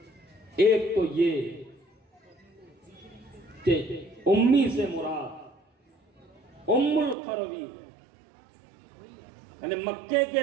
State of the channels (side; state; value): left; drops out; at 7.2 s